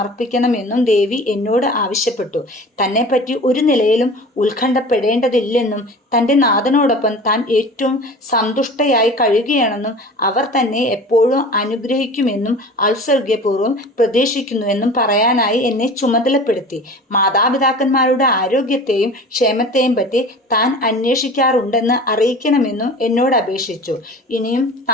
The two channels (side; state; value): both; normal; correlation 0.39